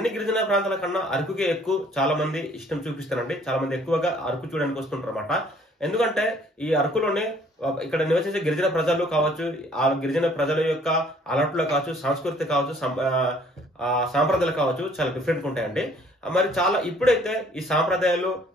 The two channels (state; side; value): normal; both; correlation 0.59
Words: గిరిజన ప్రాంతాల కన్నా అరకుకే ఎక్కువ చాలా మంది ఇష్టం చూపిస్తారండి. చాలా మంది ఎక్కువగా అరకు చూడడానికి వస్తుంటారు అన్నమాట. ఎందుకంటే ఈ అరకులోనే ఇక్కడ నివసించే గిరిజన ప్రజలు కావచ్చు, ఆ గిరిజన ప్రజల యొక్క అలవాట్లు కావచ్చు, సంస్కృతి కావచ్చు, సాంప్రదాయాలు కావచ్చు, చాలా డిఫరెంట్ ఉంటాయండి. మరి చాలా ఇప్పుడైతే ఈ సాంప్రదాయాలు,